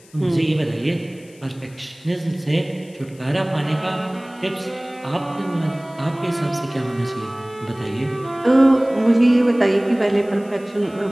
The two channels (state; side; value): noise; left; hiss, 27 dB below the sound